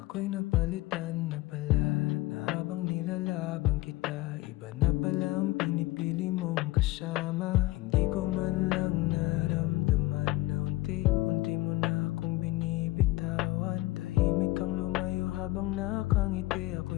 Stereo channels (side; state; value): right; quieter; 18.9 dB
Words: ako'y napalitan na pala, na habang nilalaban kita, iba na pala ang pinipili mong kasama. Hindi ko man lang naramdaman na unti-unti mo na akong binibitawan. Tahimik kang lumayo habang nakangiti,